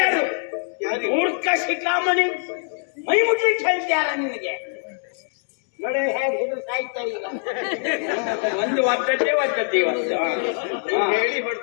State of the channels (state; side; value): silent; right; 63 dB below the other